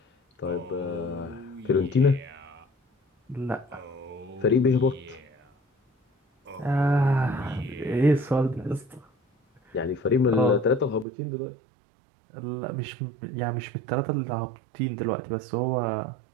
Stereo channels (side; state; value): left; drops out; at 11.1 s